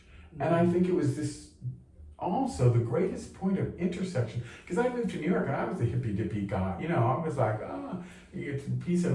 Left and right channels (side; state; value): both; identical; correlation 1.00